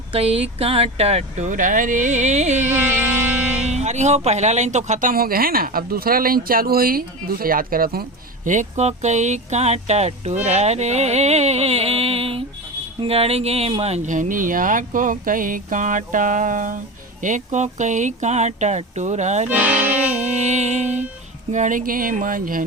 कई कांटा टूरा रे। अरे हो, पहला लाइन तो खत्म हो गया है ना, अब दूसरा लाइन चालू हुई, दूसरा याद करत हूँ, एको कई कांटा टूरा रे, गड़गे मंझनिया को कई कांटा, एको कई कांटा टूरा रे, गड़गे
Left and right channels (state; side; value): normal; both; correlation 0.25